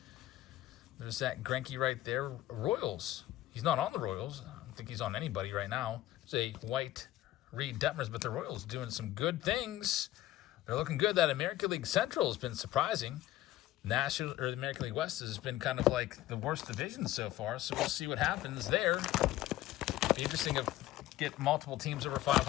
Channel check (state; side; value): quieter; right; 14.8 dB